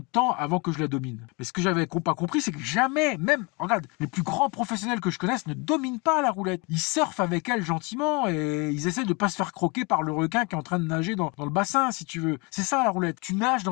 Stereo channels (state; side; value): quieter; right; 29.1 dB